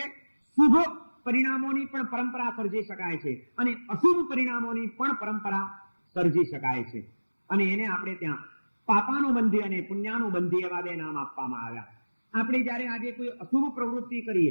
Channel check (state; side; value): inverted; both; correlation -1.00